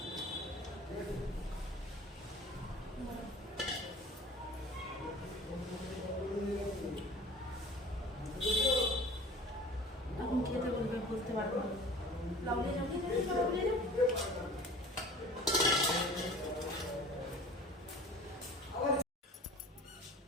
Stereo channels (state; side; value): normal; both; correlation 0.43